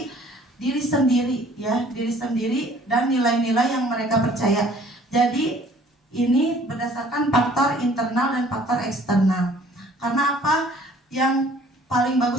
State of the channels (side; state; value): both; normal; correlation 0.55